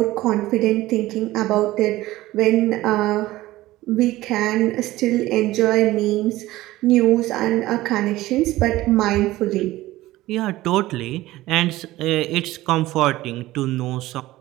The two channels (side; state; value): left; quieter; 17.0 dB